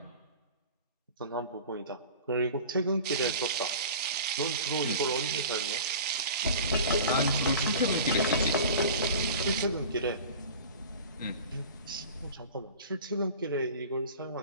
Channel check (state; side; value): inverted; both; correlation -0.39